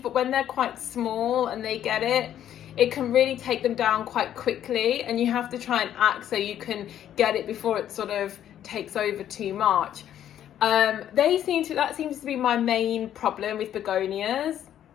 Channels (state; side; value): quieter; right; 10.8 dB